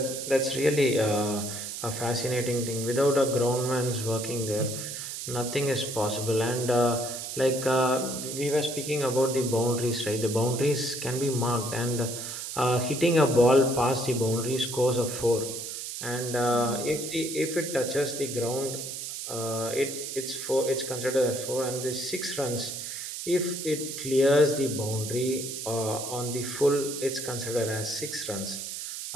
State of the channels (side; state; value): right; noise; hiss, 7 dB below the sound